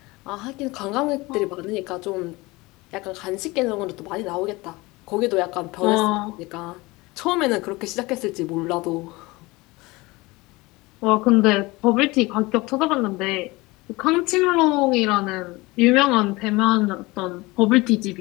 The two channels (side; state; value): right; quieter; 22.4 dB